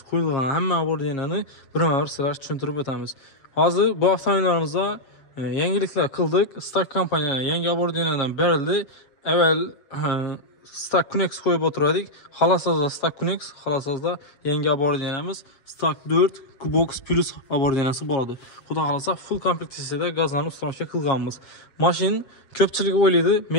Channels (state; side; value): late; right; 7.4 ms